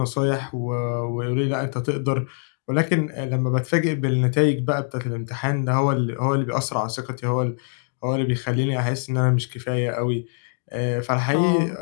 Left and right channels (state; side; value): silent; right; 60 dB below the other